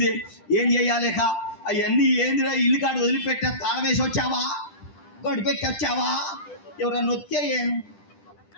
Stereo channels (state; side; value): late; right; 10 ms